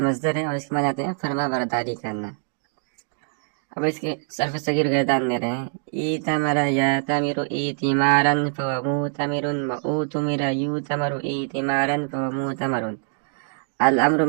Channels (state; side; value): silent; left; digital silence